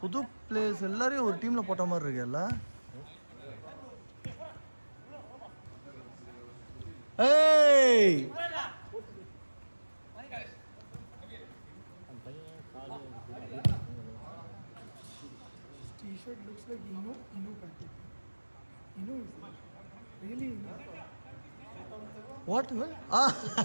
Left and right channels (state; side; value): inverted; both; correlation -1.00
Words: புது பிளேயர்ஸ் எல்லாரையும் ஒரு டீம்ல போட்ட மாதிரி இருக்குல்ல. ஏய் T-shirt looks like Inu packet. Inu is there. Really Inu. What?